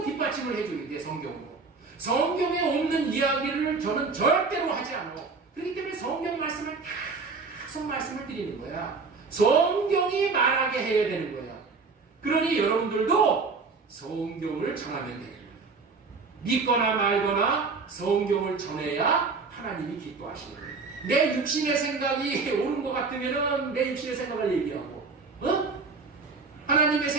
뒷받침을 해줘야 돼. 성경으로. 성경에 없는 이야기를 저는 절대로 하지 않아. 그렇기 때문에 성경 말씀을 계속 말씀을 드리는 거야. 성경이 말하게 해야 되는 거야. 그러니 여러분들도 성경을 전하면 되는 거야. 믿거나 말거나 성경을 전해야 하나님이 기뻐하시는 거예요. 내 육신의 생각이 옳은 것 같으면 내 육신의 생각을 얘기하고 하나님의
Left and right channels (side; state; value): left; quieter; 4.5 dB